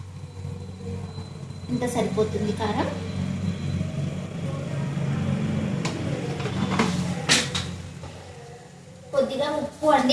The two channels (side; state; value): both; identical; correlation 1.00